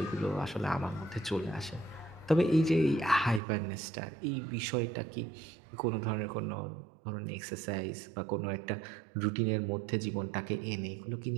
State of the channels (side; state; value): left; drops out; at 3.4 s